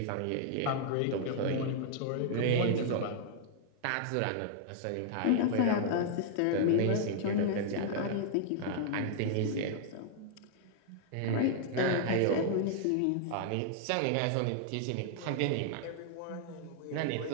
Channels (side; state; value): both; different; correlation -0.01